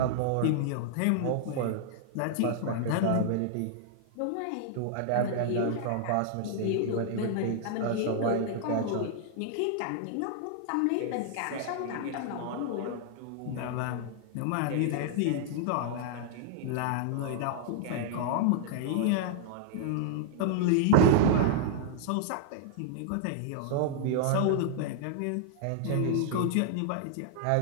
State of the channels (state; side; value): different; both; correlation -0.01